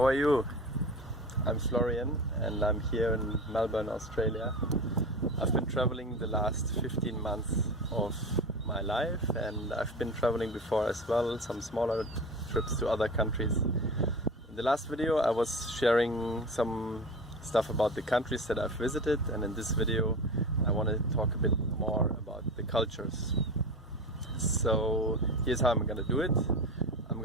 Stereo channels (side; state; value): both; normal; correlation 0.30